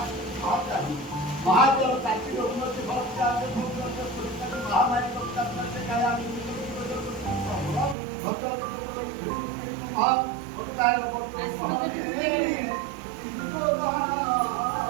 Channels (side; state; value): left; drops out; at 8.0 s